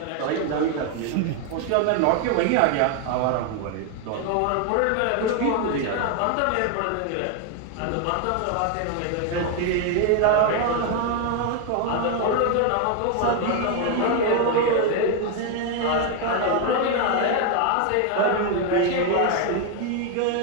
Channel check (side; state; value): both; different; correlation 0.01